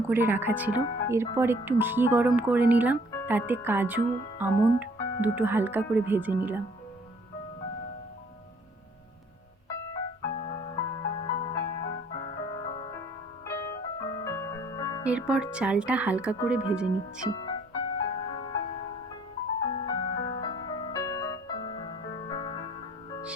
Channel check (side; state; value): both; normal; correlation 0.59